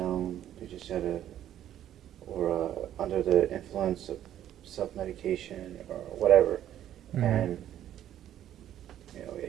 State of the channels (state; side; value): quieter; left; 11.5 dB